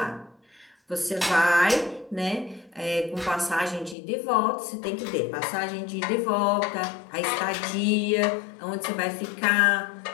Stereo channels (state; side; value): drops out; right; at 4.0 s